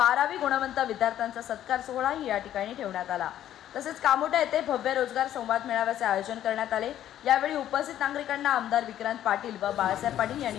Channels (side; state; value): right; quieter; 11.7 dB